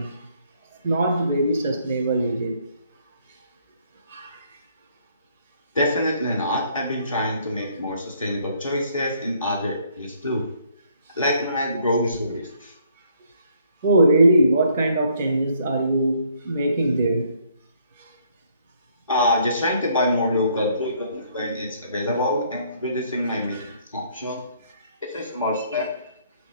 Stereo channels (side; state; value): both; inverted; correlation -0.66